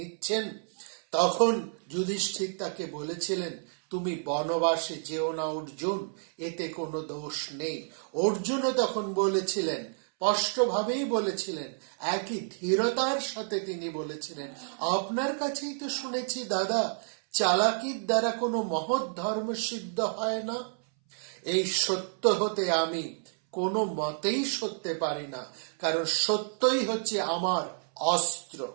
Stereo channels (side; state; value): left; silent; 58 dB below the other